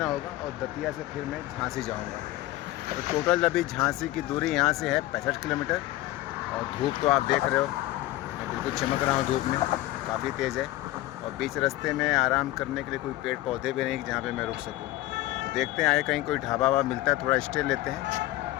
होगा और दतिया से फिर मैं झांसी जाऊँगा। तो टोटल अभी झांसी की दूरी यहाँ से है 65 किलोमीटर। और धूप तो आप देख रहे हो, मैं बिल्कुल चमक रहा हूँ धूप में, काफ़ी तेज़ है। और बीच रास्ते में आराम करने के लिए कोई पेड़ पौधे भी नहीं जहाँ पे मैं रुक सकूँ। तो देखते हैं आगे कहीं कोई ढाबा वाबा मिलता है, थोड़ा स्टे लेते हैं।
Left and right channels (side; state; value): right; quieter; 16.7 dB